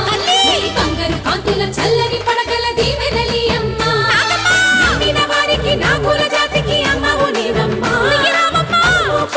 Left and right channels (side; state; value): both; identical; correlation 1.00